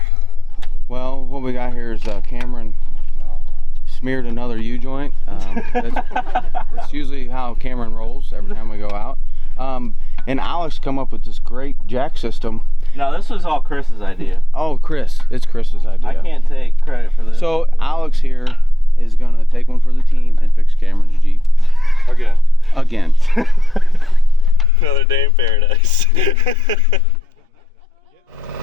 Well, what we got here is Cameron smeared another U-joint. That's usually how Cameron rolls every time we go out. And Alex come up with this great jack system. No, this was all Chris's idea. Oh, Chris. It's Chris's idea. I can't take credit for this. So Alex here is going to take one for the team and fix Cameron's Jeep. Again. Another day in paradise.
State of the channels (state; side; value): normal; both; correlation 0.94